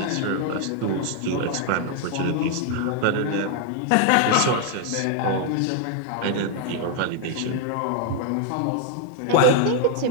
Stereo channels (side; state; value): both; different; correlation 0.00